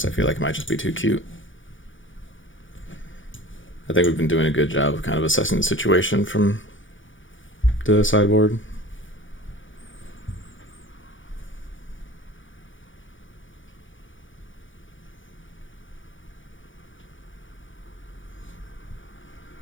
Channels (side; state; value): right; late; 0.56 ms